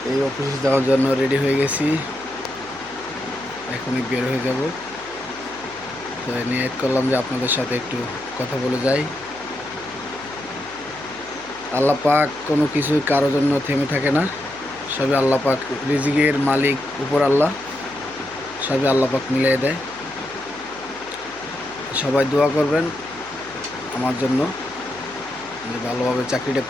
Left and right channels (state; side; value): noise; left; hum, 22 dB below the sound